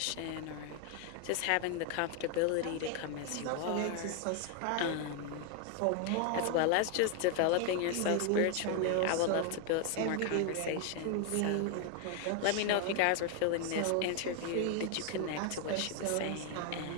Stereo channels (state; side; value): different; both; correlation 0.00